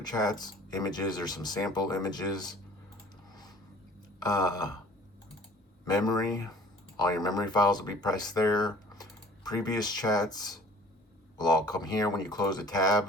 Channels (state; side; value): normal; both; correlation 0.47